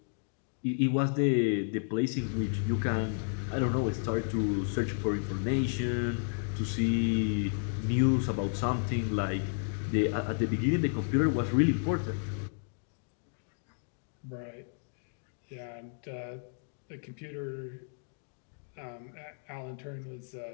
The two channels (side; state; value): right; silent; digital silence